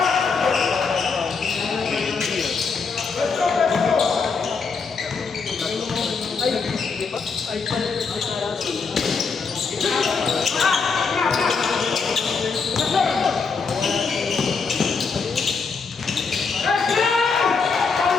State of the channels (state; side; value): quieter; right; 5.0 dB